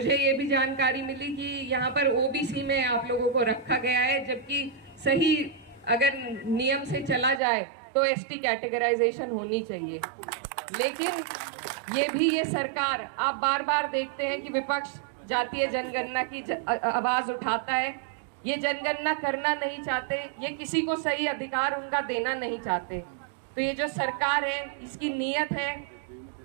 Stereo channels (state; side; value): drops out; left; at 7.4 s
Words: ये भी जानकारी मिली कि यहाँ पर ओबीसी में आप लोगों को रखा गया है, जबकि सही अगर नियम से चला जाए तो एसटी कैटेगराइजेशन होनी चाहिए। लेकिन ये भी ये सरकार, आप बार बार देखते हैं कि विपक्ष जातीय जनगणना की आवाज उठाता है, ये जनगणना करना नहीं चाहते, ये किसी को सही अधिकार उनका देना नहीं चाहते। तो ये जो सरकार है, इसकी नीयत है,